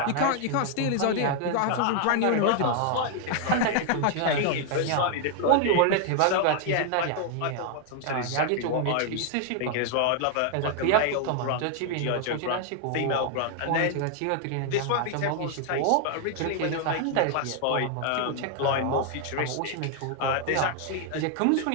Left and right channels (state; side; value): different; both; correlation 0.00